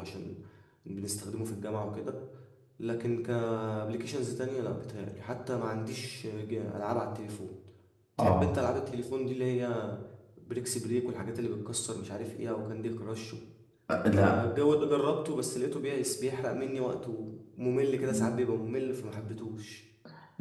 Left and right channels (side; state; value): both; identical; correlation 1.00